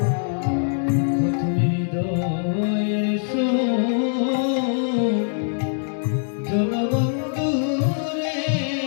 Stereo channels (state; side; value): silent; right; digital silence